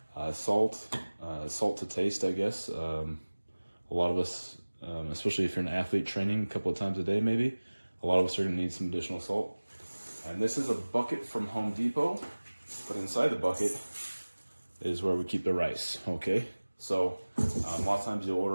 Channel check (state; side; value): inverted; both; correlation -1.00